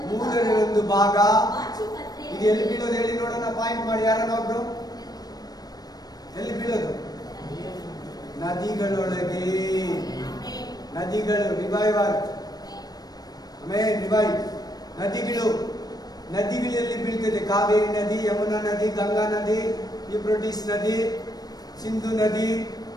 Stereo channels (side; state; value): right; late; 0.19 ms